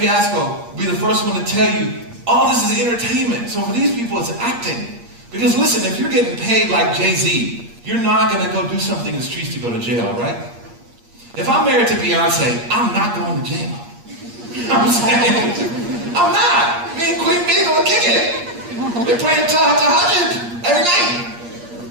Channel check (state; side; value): late; left; 8.5 ms